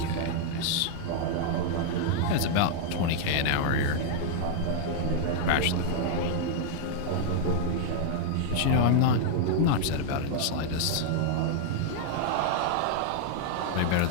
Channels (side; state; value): both; different; correlation -0.01